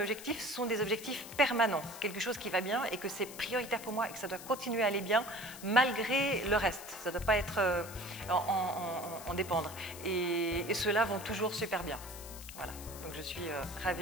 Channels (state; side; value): noise; left; hiss, 13 dB below the sound